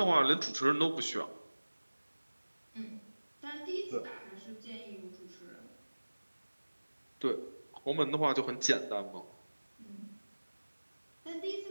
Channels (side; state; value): both; inverted; correlation -1.00